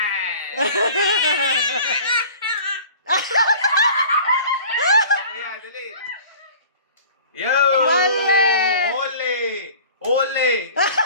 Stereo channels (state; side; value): inverted; both; correlation -0.44